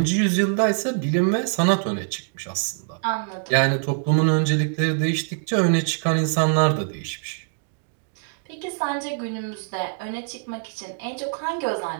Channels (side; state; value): left; silent; digital silence